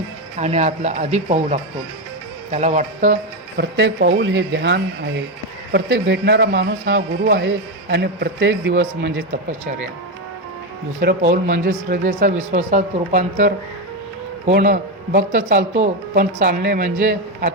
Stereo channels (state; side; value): normal; both; correlation 0.09